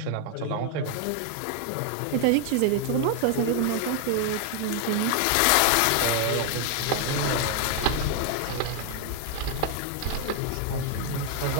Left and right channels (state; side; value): different; both; correlation 0.00